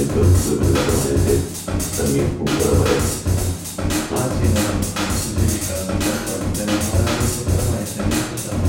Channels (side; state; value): both; identical; correlation 1.00